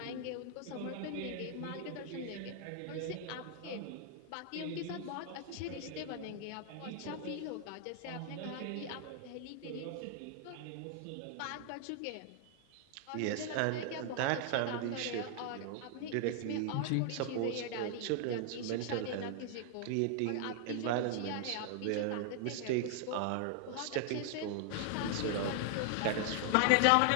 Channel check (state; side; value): different; both; correlation 0.00